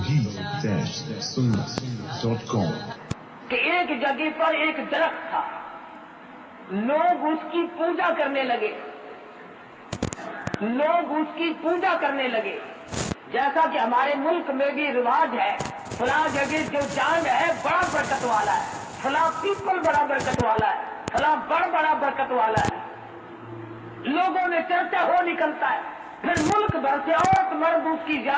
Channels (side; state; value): both; identical; correlation 1.00